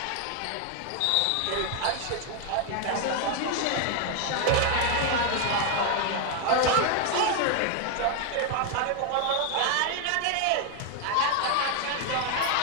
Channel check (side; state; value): both; different; correlation 0.01